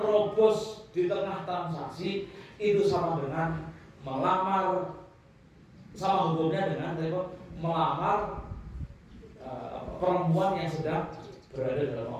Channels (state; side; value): identical; both; correlation 1.00